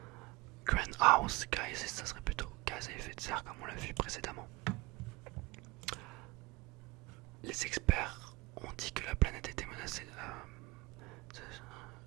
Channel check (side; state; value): left; quieter; 22.2 dB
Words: Greenhouse gases, ça serait plutôt gaz à effet de serre, comme on l'a vu précédemment. Les experts ont dit que la planète était menacée.